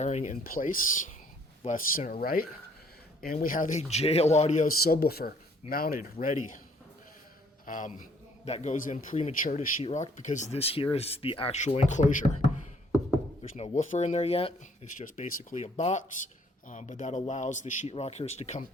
in place, left, center, right. And we have a JL Audio subwoofer mounted, ready. That goes in premature to sheetrock because this here is the actual enclosure. There's no woofer in there yet. It's just basically a box, but that allows the sheetrockers to come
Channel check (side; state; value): both; normal; correlation 0.62